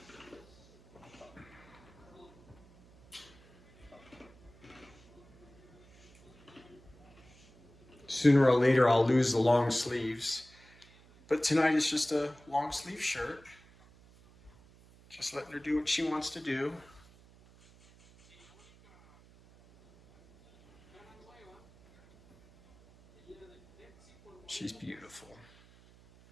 Sooner or later, I'll lose the long sleeves. But tonight it's just a long sleeve shirt. Just letting her do what she wants to do. She's beautiful.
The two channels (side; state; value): right; noise; hum, 26 dB below the sound